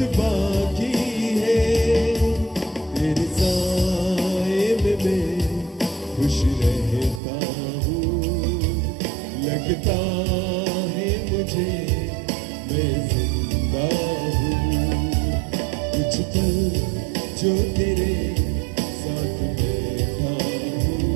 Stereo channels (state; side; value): drops out; left; at 7.2 s